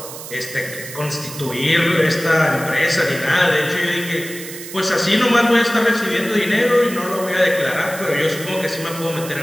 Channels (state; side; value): noise; right; hiss, 12 dB below the sound